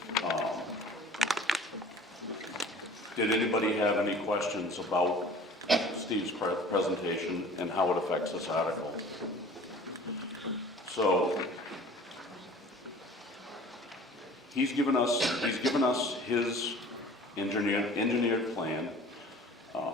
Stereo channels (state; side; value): normal; both; correlation 0.46